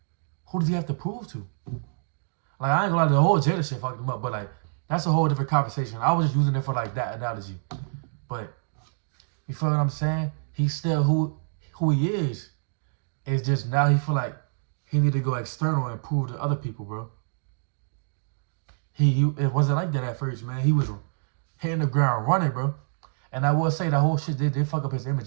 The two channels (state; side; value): silent; left; digital silence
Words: Who does he have to prove to? Like, I ain't gonna lie, the whole Jada shit fucked him up, but like, that's a whole different conversation. I was just using it for like that analogy. But, you feel what I'm saying? He's still who he is. It's just now he feel like he need to go external and prove to other people, bro. It wasn't like that at first, man. He was hitting the ground running, bro. And I will say that whole shit did fuck up his